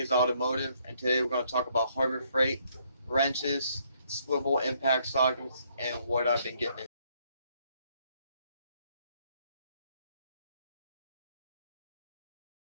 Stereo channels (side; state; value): both; inverted; correlation -0.70